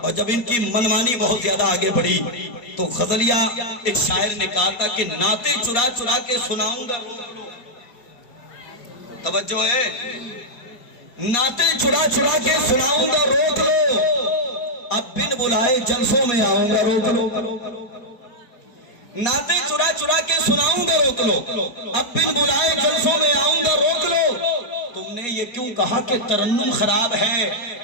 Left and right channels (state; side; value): late; right; 4.7 ms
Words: اور جب ان کی منمانی بہت زیادہ آگے بڑھی تو غزلیہ ایک شاعر نے کہا تھا کہ نعتیں چرا چرا کے سناؤں گا. توجہ ہے, نعتیں چرا چرا کے سناؤں گا روک لو, اب بن بلائے جلسوں میں آؤں گا روک لو. نعتیں چرا چرا کے سناؤں گا روک لو, اب بن بلائے جلسوں میں آؤں گا روک لو. تم نے یہ کیوں کہا کہ ترنم خراب ہے,